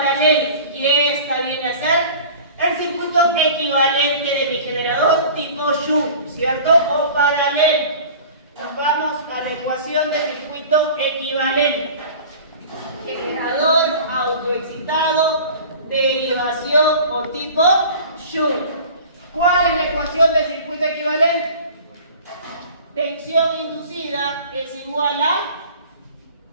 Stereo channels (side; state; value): both; inverted; correlation -0.42